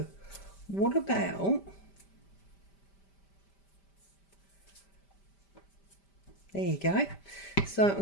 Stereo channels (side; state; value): right; late; 5.1 ms